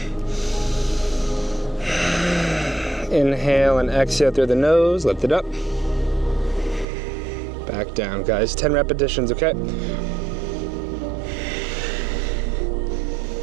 Inhale and exhale through the nose. Lift it up. Back down, guys. 10 repetitions, okay?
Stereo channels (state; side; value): drops out; left; at 6.9 s